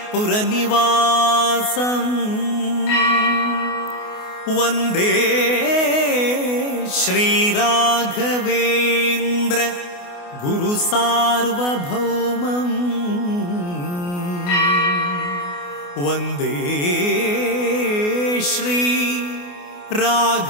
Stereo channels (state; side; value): late; right; 28 ms